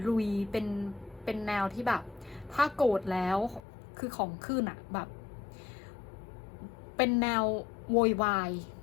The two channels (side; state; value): right; drops out; at 3.6 s